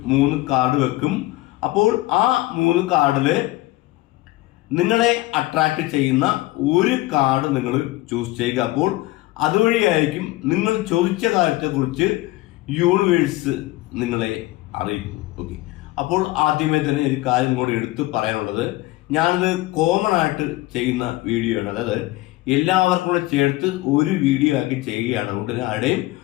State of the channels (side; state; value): right; quieter; 18.9 dB